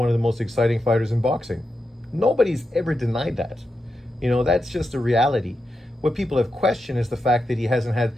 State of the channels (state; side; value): normal; both; correlation 0.88